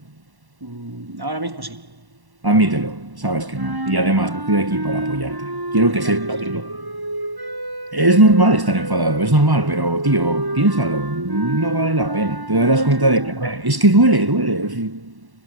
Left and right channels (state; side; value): late; left; 1.1 ms